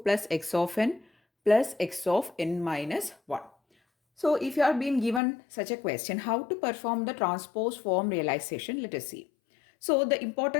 x of n plus x of n minus 1. So if you are being given such a question, how to perform the transpose form realization, let us see. So the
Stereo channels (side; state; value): right; drops out; at 5.2 s